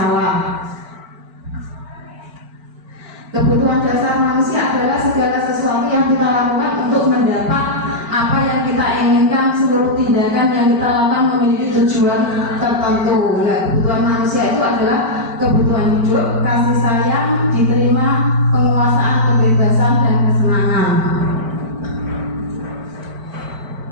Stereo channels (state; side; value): late; left; 4.5 ms